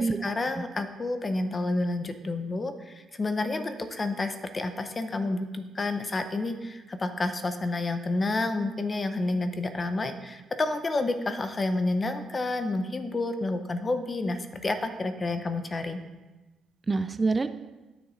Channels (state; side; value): normal; both; correlation 0.89